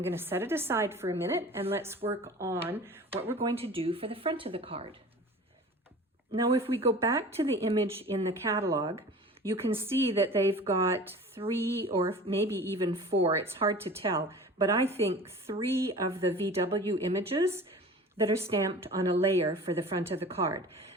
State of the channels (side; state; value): both; normal; correlation 0.40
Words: going to set it aside for a minute and let's work on what we're going to do for the front of the card. Now, if we go back to the image in the catalog, you can see that they've got 3 or maybe even 4, it's hard to tell, but I think 3 of the VW images that are stamped on a layer for the front of the card.